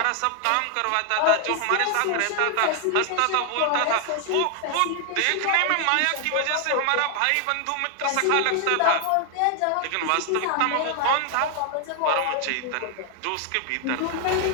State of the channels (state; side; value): different; both; correlation 0.00